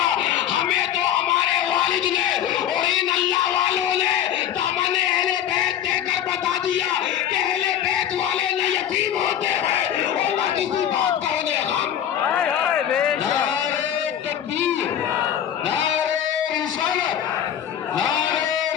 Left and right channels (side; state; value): right; quieter; 10.1 dB